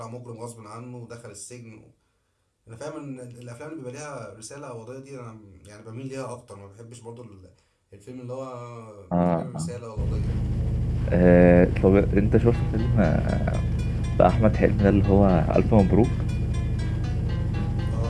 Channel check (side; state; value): both; identical; correlation 1.00